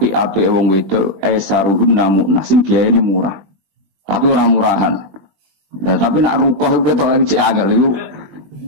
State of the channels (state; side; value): late; left; 20 ms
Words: wong wedok esaruhun namuna sing biayane murah. Tapi ora murahan. Nah, tapi nak rukoh itu ketok cek angel iku